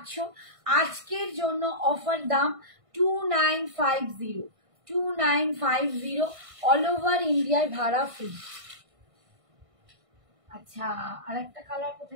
আজকের জন্য অফার দাম 2950, 2950, অল ওভার ইন্ডিয়ায় ভাড়া ফ্রি। আচ্ছা, আর একটা কালার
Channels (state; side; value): late; left; 1.5 ms